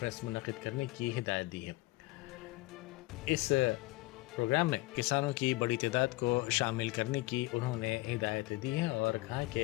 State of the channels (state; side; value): quieter; right; 21.4 dB